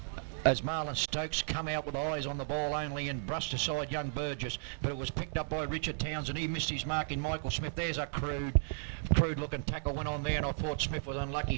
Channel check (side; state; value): left; silent; digital silence